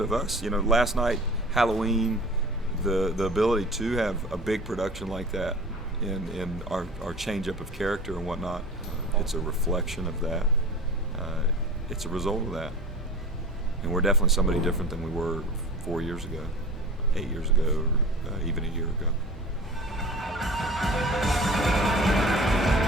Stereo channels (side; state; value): both; normal; correlation 0.39